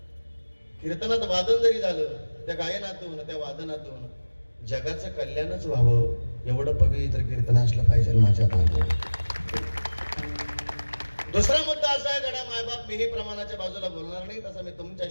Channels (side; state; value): both; inverted; correlation -1.00